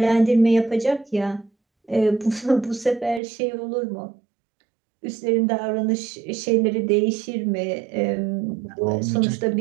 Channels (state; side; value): drops out; left; at 3.2 s